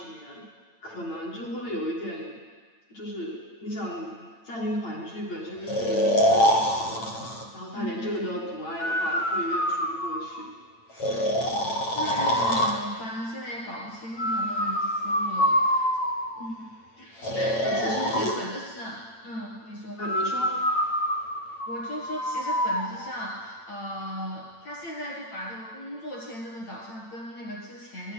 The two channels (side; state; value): right; late; 8.9 ms